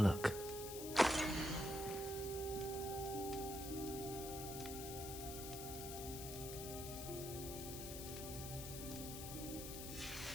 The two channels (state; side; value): noise; left; hiss, 7 dB below the sound